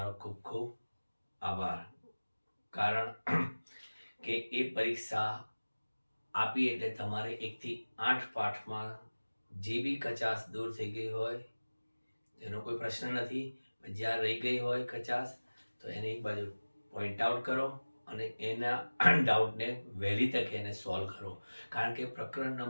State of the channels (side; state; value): both; inverted; correlation -1.00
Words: ખૂબ ખૂબ આભાર. કારણ કે એ પરીક્ષા આપી એટલે તમારે 1 થી 8 પાઠમાં જે બી કચાશ દૂર થઈ ગઈ હોય એનો કોઈ પ્રશ્ન નથી, જ્યાં રહી ગઈ હોય કચાશ તો એને એક બાજુ પોઈન્ટ આઉટ કરો અને એના ડાઉટને વહેલી તકે એને સોલ્વ કરો. કારણ કે પ્રકરણ